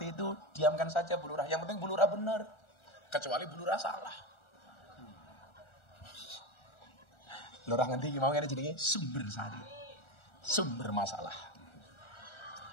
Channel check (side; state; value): right; late; 1.4 ms